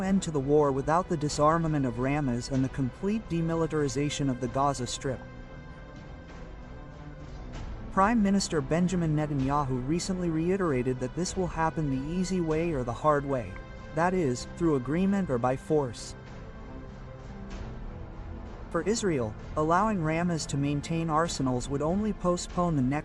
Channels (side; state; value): both; identical; correlation 1.00